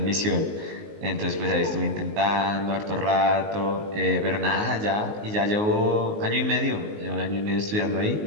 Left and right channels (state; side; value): late; left; 19 ms